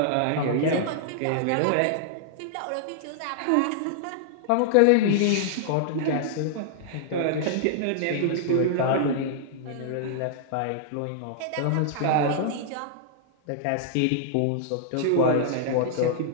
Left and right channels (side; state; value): both; different; correlation -0.01